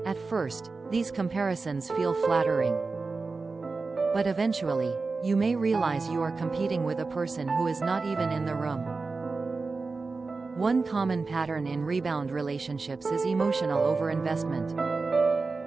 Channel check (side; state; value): left; quieter; 4.0 dB